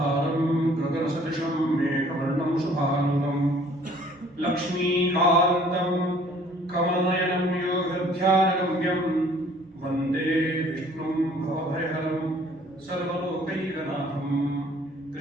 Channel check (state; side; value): normal; both; correlation 0.56